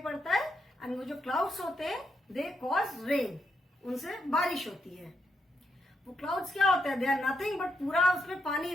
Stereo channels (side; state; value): both; normal; correlation 0.81